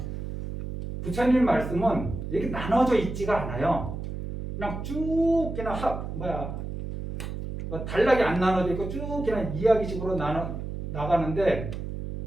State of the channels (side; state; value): right; noise; hum, 6 dB below the sound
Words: 부처님 말씀은 이렇게 나눠져 있지가 않아요. 그냥 쭉 그냥 뭐 단락이 안 나눠져 있고 쭉 그냥 이야기식으로 나가는데